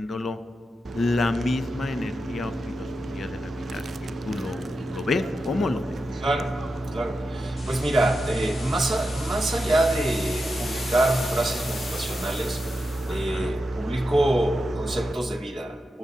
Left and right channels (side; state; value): both; normal; correlation 0.89